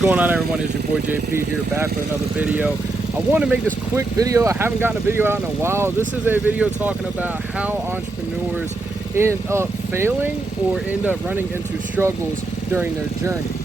on, everyone? It's your boy JP here, back with another video. I want to make this quick video. I haven't gotten a video out in a while. This is a video talking about how entrepreneurs end up failing or end up running into struggles during their journey.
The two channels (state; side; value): quieter; left; 3.1 dB